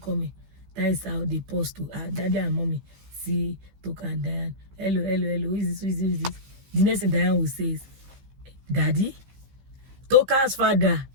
That is how they paused to Daddy and Mommy see token and Diane. Hello. Who is this? The next thing Diane will say is, Daddy? Token's father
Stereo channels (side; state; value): left; late; 15 ms